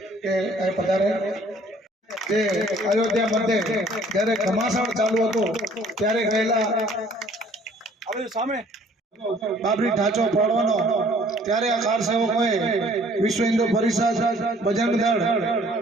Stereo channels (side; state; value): both; normal; correlation 0.57